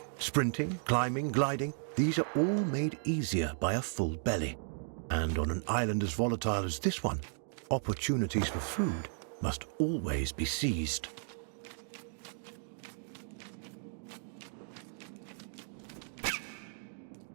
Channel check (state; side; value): silent; left; digital silence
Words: Sprinting, climbing, gliding, these are all made easier by a full belly. And on an island as volatile as this one, opportunities for food must always be seized.